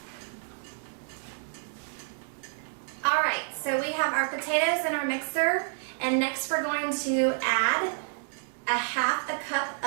Alright, so we have our potatoes in our mixer, and next we're going to add a half a cup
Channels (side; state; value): left; silent; 58 dB below the other